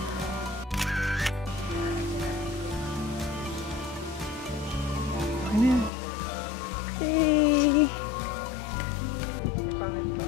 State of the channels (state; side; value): drops out; right; at 5.9 s